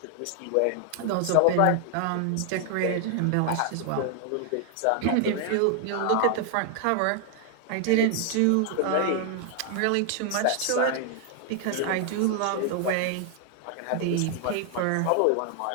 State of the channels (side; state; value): both; different; correlation 0.00